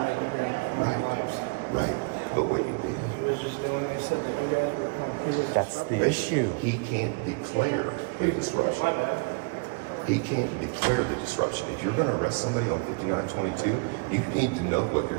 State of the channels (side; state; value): left; quieter; 33.8 dB